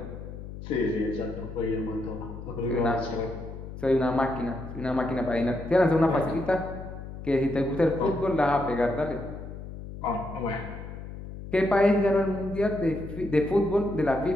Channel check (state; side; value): noise; left; hum, 11 dB below the sound